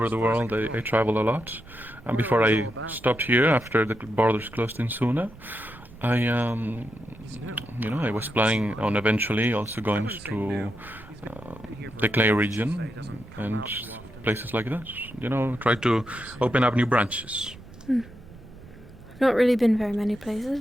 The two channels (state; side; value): noise; right; rumble, 20 dB below the sound